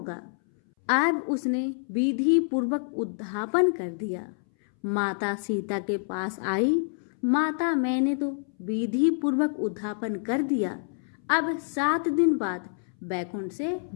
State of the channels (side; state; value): right; silent; 60 dB below the other